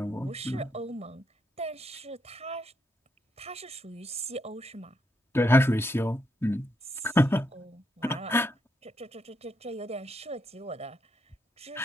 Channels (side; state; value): both; normal; correlation 0.79